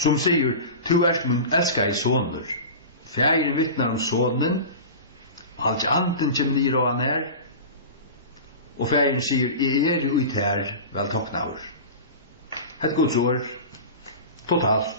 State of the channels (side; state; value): both; inverted; correlation -0.31